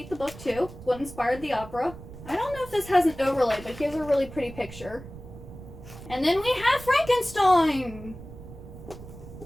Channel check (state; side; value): noise; right; rumble, 15 dB below the sound